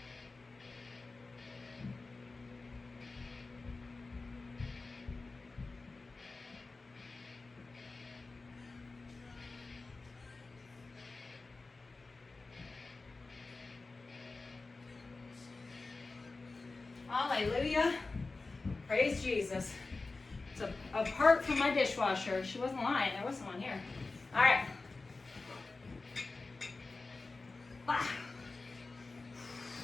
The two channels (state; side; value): quieter; right; 3.6 dB